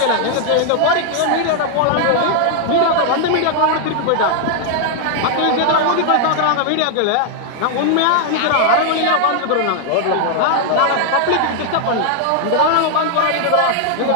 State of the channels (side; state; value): both; different; correlation 0.00